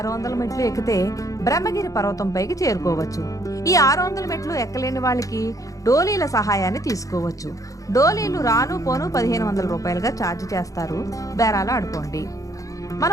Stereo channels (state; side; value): late; right; 0.16 ms